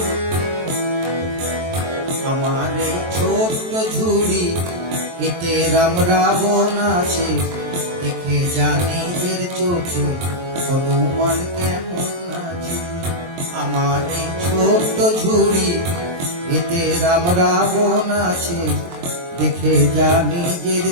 আমার এই ছোট্ট ঝুড়ি, এতে রাম রাবণ আছে, দেখে জানি এর চোখে হনুমান কেমন আছে। আমার এই ছোট্ট ঝুড়ি, এতে রাম রাবণ আছে, দেখে জানি এর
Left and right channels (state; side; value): late; left; 23 ms